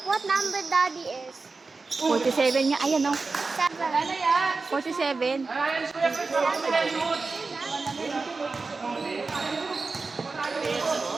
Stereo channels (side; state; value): left; quieter; 4.0 dB